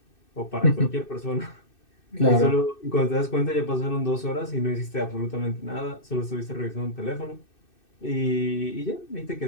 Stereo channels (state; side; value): late; right; 2.6 ms